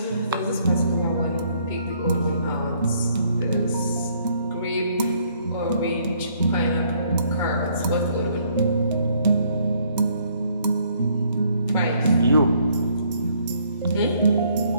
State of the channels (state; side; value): inverted; both; correlation -0.67